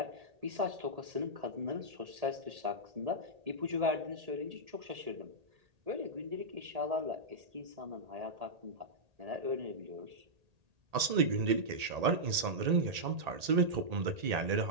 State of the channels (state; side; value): late; left; 1.8 ms